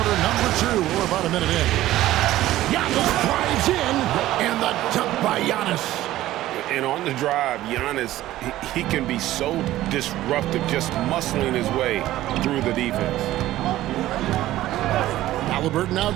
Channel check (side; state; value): left; quieter; 15.0 dB